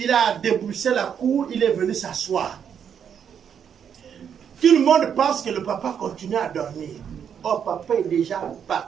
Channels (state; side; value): quieter; left; 8.0 dB